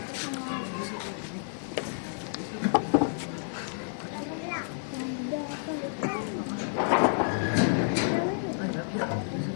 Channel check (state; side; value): silent; right; digital silence